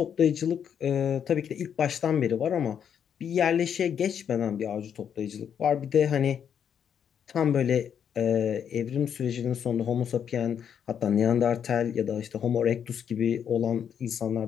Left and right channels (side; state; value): right; quieter; 8.3 dB